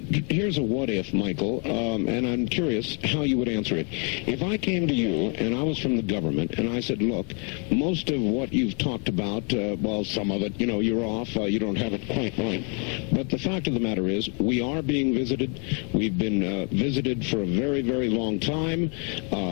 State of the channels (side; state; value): right; quieter; 37.4 dB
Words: a what if, Michael, and I'm curious how you would answer it. If I came to you and I was from the government and I said, look, most of what you've talked about, well, some of it, you're off, you don't have it quite right. But the fact of the matter is, we are being visited. We've been visited for a very, very long time.